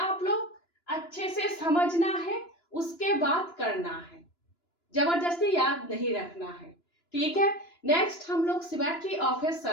लोग? अच्छे से समझना है, उसके बाद करना है, जबरदस्ती याद नहीं रखना है। ठीक है। नेक्स्ट हम लोग सिमेट्री ऑफ ए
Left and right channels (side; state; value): right; late; 2.9 ms